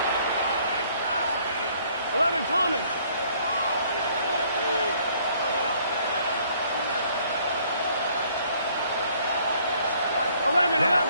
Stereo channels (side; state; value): both; inverted; correlation -0.62